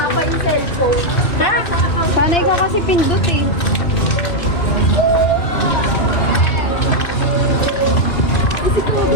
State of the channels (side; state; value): right; late; 2.3 ms